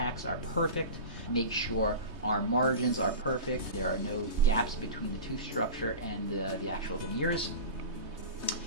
are perfect, make sure our margins are perfect, there are no gaps between the tooth structure and the actual veneers.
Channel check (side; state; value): left; late; 3.2 ms